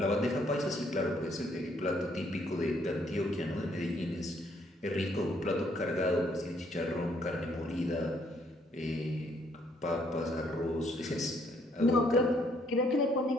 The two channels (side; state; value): both; normal; correlation 0.68